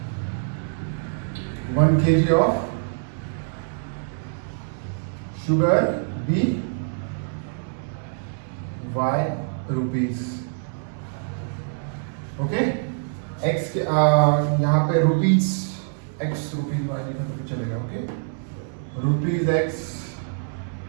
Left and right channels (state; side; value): silent; left; digital silence